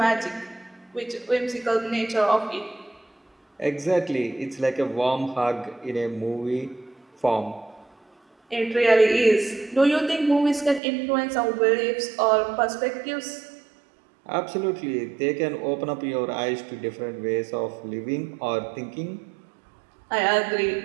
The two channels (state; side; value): drops out; left; at 10.8 s